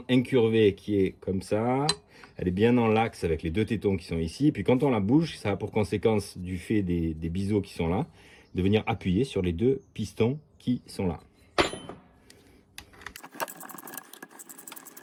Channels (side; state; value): both; identical; correlation 1.00